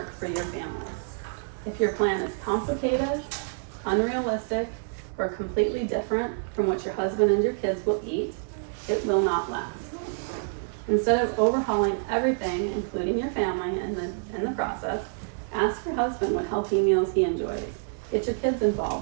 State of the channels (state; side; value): silent; left; digital silence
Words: for your family. If your plan is complicated, unrealistic, or completely different from what your husband and your kids will eat, it will not last. Instead of overhauling everything, including your family, in the process, ask your husband what healthy meals he enjoys. Get your kids